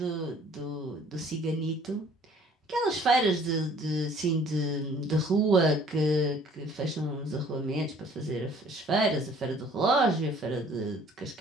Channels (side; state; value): both; normal; correlation 0.56